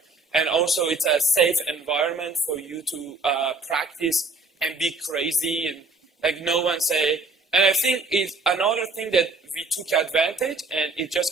And also it's a safe environment for you to practice and be crazy and like no one say. And I think it's another thing that we took advantage, and it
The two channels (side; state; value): left; quieter; 3.3 dB